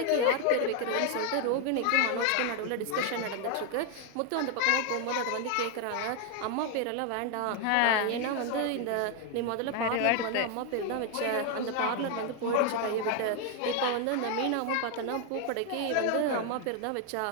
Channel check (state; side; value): different; both; correlation 0.01